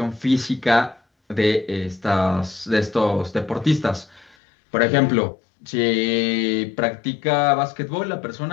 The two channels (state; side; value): drops out; right; at 4.4 s